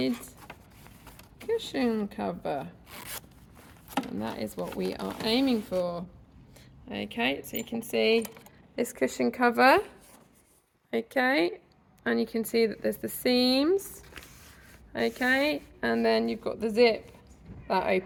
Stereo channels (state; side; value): identical; both; correlation 1.00